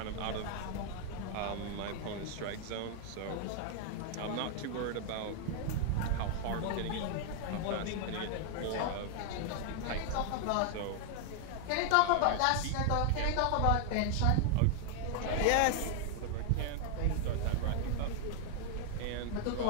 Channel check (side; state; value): both; different; correlation 0.00